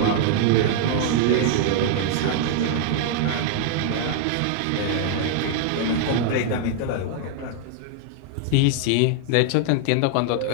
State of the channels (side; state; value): both; different; correlation 0.00